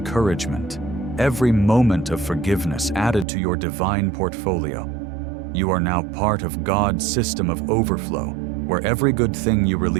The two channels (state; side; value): drops out; left; at 3.2 s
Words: every moment of forgiveness added to your divine portfolio? You are now part of God's system of overflow, where every good thing you